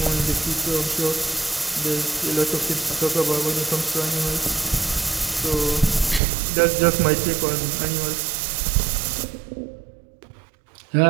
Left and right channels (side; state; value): left; drops out; at 6.2 s